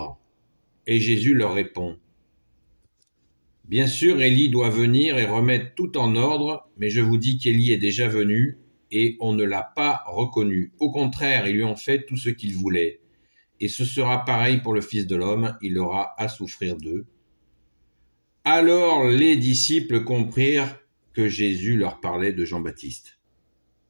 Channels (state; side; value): inverted; both; correlation -1.00